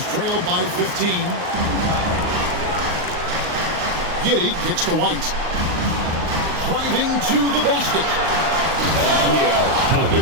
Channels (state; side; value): late; left; 38 ms